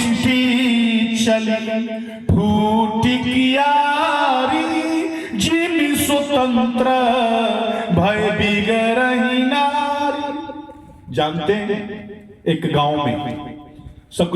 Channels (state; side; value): identical; both; correlation 1.00